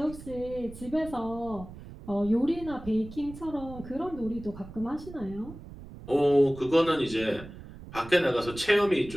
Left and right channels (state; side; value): noise; right; rumble, 15 dB below the sound